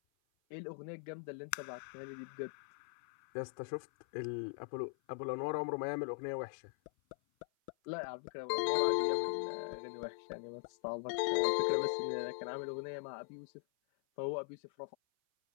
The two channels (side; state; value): right; silent; 51 dB below the other